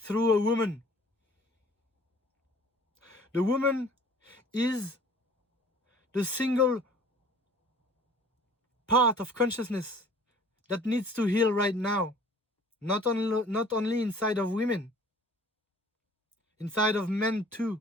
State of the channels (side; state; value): both; normal; correlation 0.50